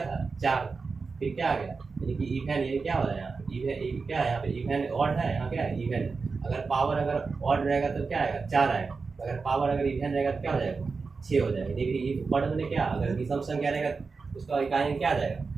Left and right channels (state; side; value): quieter; left; 4.6 dB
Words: था 4 फिर क्या आ गया, यानी कि इवन, यानी क्या हो रहा है यहाँ इवन क्या है यहाँ पे इवन ऑड है, यहाँ क्या है इवन है। अगर पावर अगर ऑड रहेगा तो क्या आएगा 4 आएगा, अगर पावर अगर इवन रहेगा तो क्या हो जाएगा 6 हो जाएगा। देखिए ये पढ़ मैंने क्या, अगर विषम संख्या रहेगा उसका इकाई क्या आ जाएगा,